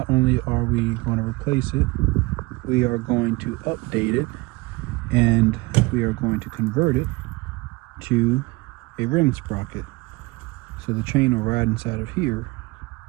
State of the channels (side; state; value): left; quieter; 23.5 dB